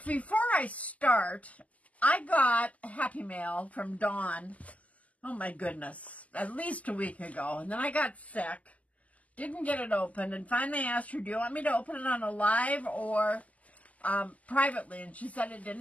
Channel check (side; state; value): right; late; 0.072 ms